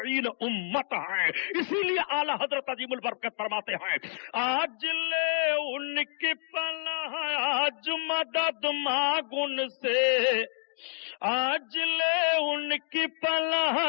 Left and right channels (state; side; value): silent; right; 59 dB below the other